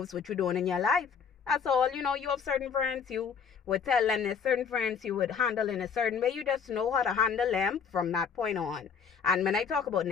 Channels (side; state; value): right; quieter; 6.6 dB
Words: what you're doing in your life. That's all. You have certain friends, you would tell them there's certain friends you would handle in a certain way. You just know how to handle them from that point on. And when I talk about